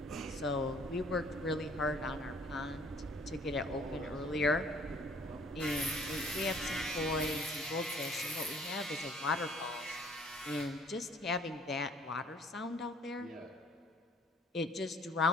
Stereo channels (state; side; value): normal; both; correlation 0.58